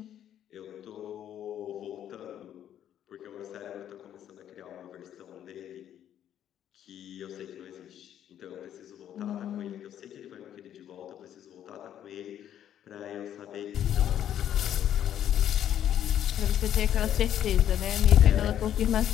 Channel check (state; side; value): quieter; right; 10.5 dB